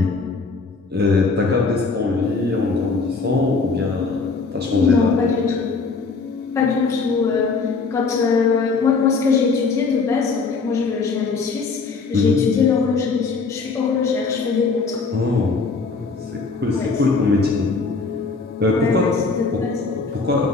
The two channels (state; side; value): quieter; right; 4.4 dB